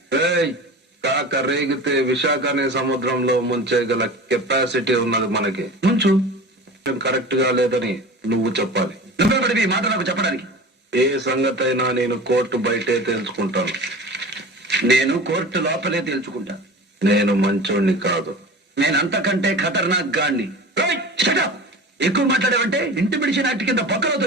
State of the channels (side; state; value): both; normal; correlation 0.35